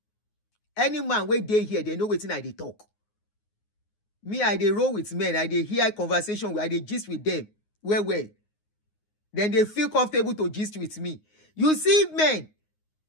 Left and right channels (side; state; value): right; late; 9.6 ms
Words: Any man wey dey here, they know wetin I dey talk. Me, I dey roll with men. I dey hear conversation. I dey gist with them. Well. Then they feel comfortable to gist with me. You see men,